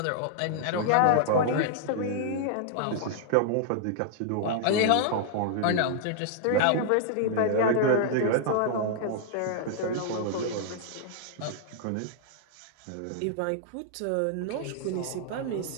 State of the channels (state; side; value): different; both; correlation -0.01